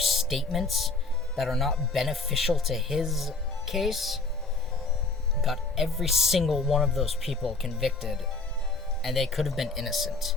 that are not beneficial to his case. Got every single one of those people convicted, and they could have been innocent.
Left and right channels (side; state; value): right; quieter; 3.8 dB